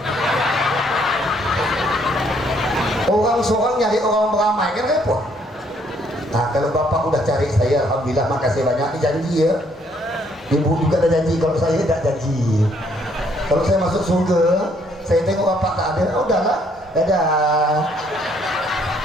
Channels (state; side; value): normal; both; correlation 0.67